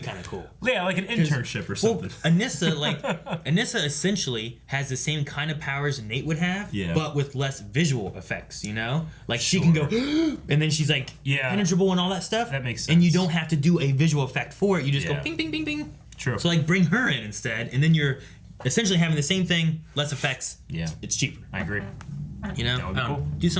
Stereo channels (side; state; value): both; identical; correlation 1.00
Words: of cool. Yeah, like an internship or something. Well, Anissa essentially has the same kind of powers Nate would have, but with less visual effects. Like she can go, and then she's like penetrable and all that stuff. That makes sense. And you don't have to do a visual effect for it. You just go bing, bing, bing, bing. True. So like bring her in instead, and then you're essentially having the same thing, less effects. Yeah. It's cheaper. I agree. That would be cool. Do